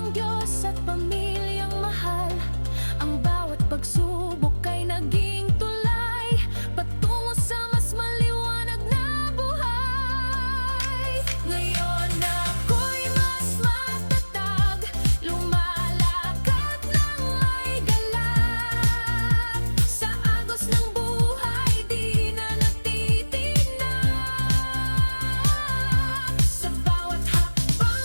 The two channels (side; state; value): both; inverted; correlation -1.00